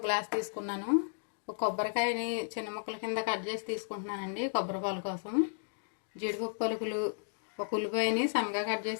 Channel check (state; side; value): silent; right; digital silence